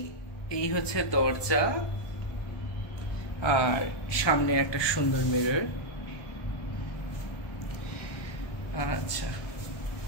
এই হচ্ছে দরজা, আর সামনে একটা সুন্দর মিরর। আচ্ছা,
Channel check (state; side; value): late; right; 1.2 ms